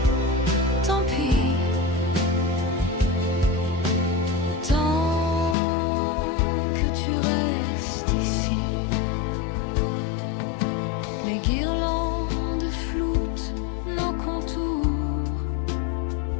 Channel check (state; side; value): drops out; right; at 5.6 s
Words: Les guirlandes floutent nos contours.